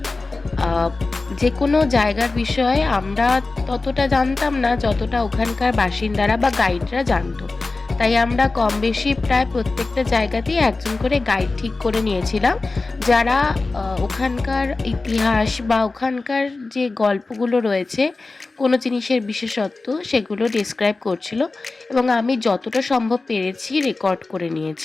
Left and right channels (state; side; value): quieter; right; 3.5 dB